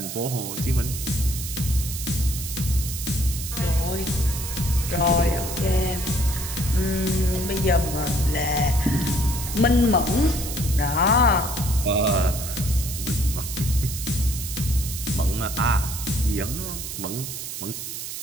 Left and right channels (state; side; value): noise; right; hiss, 7 dB below the sound